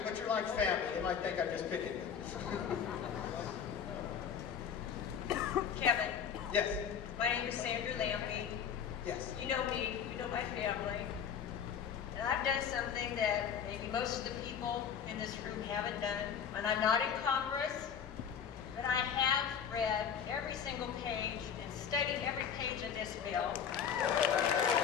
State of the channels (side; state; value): right; quieter; 7.7 dB